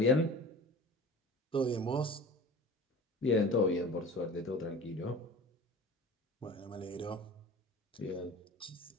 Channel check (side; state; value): both; normal; correlation 0.39